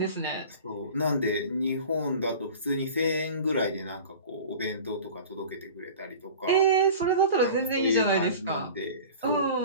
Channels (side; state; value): both; inverted; correlation -0.39